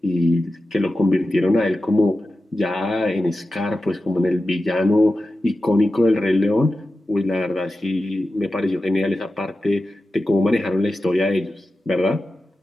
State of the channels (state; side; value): normal; both; correlation 0.93